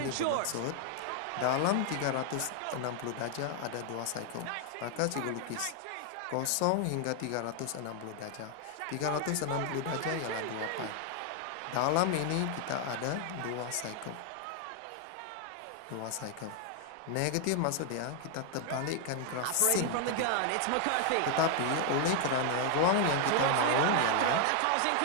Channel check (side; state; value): both; different; correlation 0.00